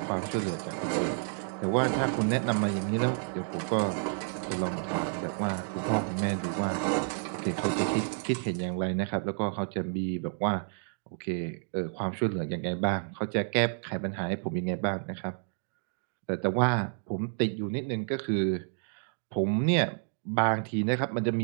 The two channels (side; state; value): left; silent; 58 dB below the other